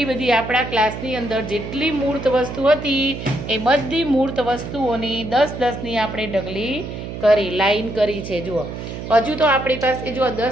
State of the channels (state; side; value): noise; right; hum, 8 dB below the sound